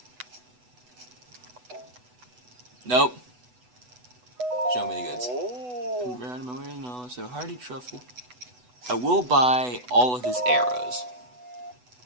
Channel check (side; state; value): left; late; 8.1 ms